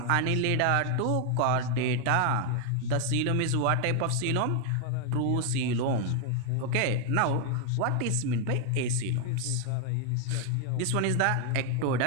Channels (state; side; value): different; both; correlation 0.00